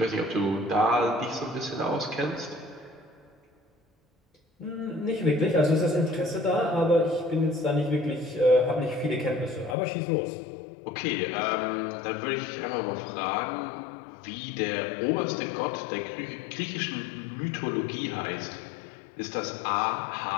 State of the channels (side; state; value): right; drops out; at 9.8 s